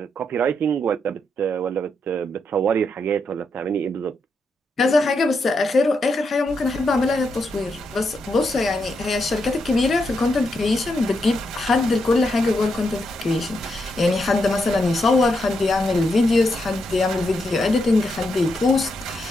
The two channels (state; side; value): normal; both; correlation 0.82